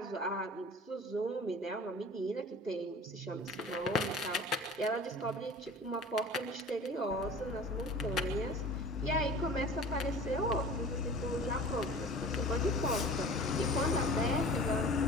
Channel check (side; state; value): both; normal; correlation 0.41